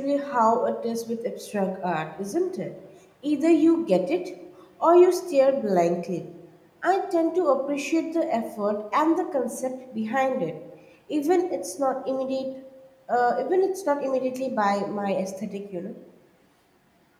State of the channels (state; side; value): identical; both; correlation 1.00